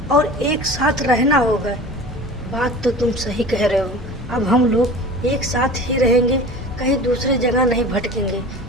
और एक साथ रहना होगा। बात तो तुम सही कह रहे हो, अब हम लोग एक साथ ही रहेंगे, कहीं दूसरे जगह नहीं भटकेंगे,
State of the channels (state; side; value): normal; both; correlation 0.38